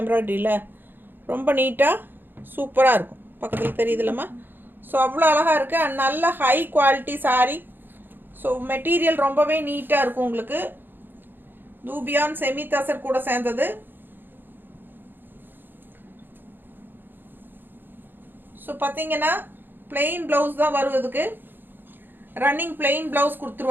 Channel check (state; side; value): late; left; 0.095 ms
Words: எம்ப்ராய்டரியில்? ரொம்ப நீட்டாக சூப்பராக இருக்கும். பக்கத்தில் தெரியுதுல்லம்மா? ஸோ அவ்வளோ அழகாக இருக்குது. அண்ட் நல்ல high quality sari. So material ரொம்பவே நீட்டாக இருக்கும் உங்களுக்கு. தூபியான் செமி தசர் கூட சேர்ந்தது. ஸோ பார்த்தீங்கன்னா பிளெயின் ப்ளவுஸ் தான் வருவதுக்கு, ரன்னிங் பிளெயின் ப்ளவுஸ்